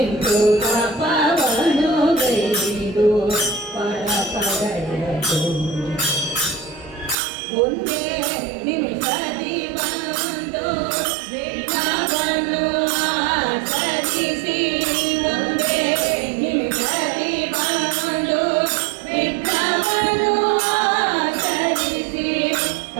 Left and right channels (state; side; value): drops out; left; at 7.2 s